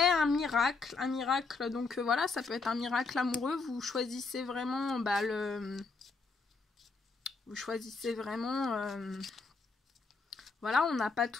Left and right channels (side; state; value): right; quieter; 4.2 dB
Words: un miracle, donc voilà, ça peut être un miracle amoureux, vous choisissez vraiment, vous choisissez vraiment, voilà, on n'a pas